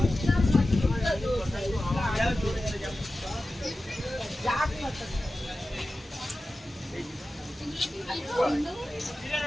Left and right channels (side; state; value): both; normal; correlation 0.94